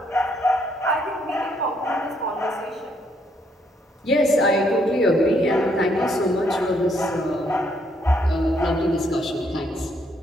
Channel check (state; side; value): normal; both; correlation 0.71